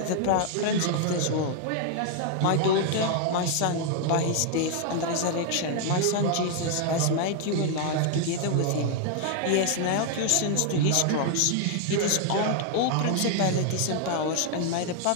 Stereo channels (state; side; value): different; both; correlation 0.00